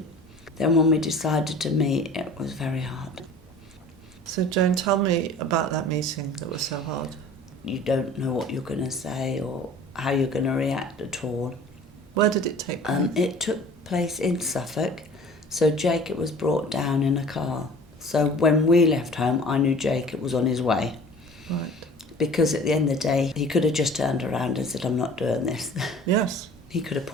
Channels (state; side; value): normal; both; correlation 0.45